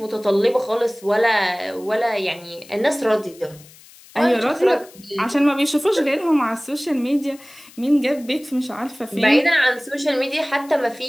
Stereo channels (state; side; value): noise; left; hiss, 23 dB below the sound